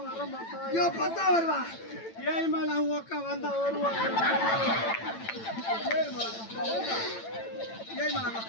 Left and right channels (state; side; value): late; right; 8.9 ms